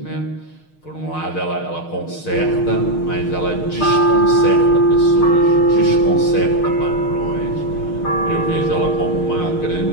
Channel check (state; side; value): late; right; 6.5 ms